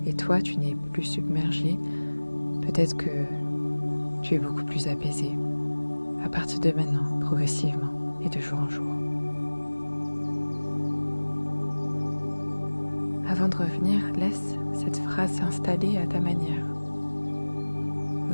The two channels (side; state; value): both; inverted; correlation -1.00